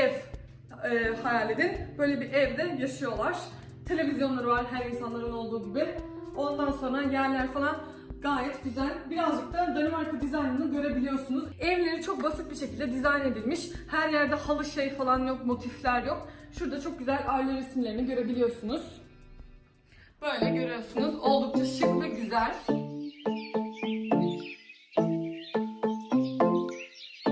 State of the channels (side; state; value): both; identical; correlation 1.00